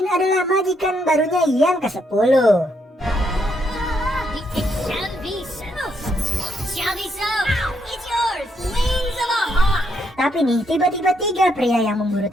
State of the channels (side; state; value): both; normal; correlation 0.76